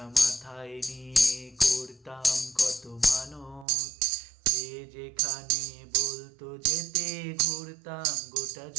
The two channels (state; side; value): drops out; left; at 3.7 s